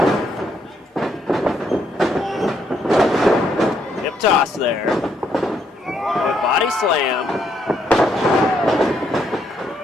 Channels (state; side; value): normal; both; correlation 0.74